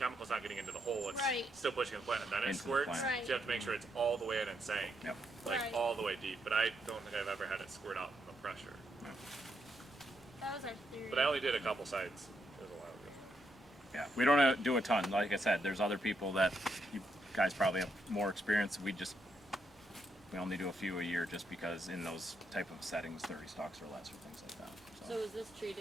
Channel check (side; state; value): both; normal; correlation 0.79